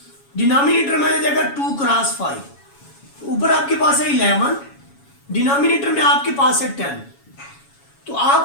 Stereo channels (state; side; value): late; right; 7.2 ms